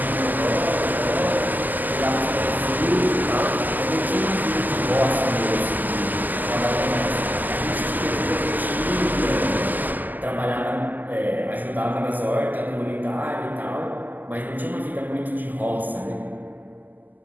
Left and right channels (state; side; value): late; left; 0.084 ms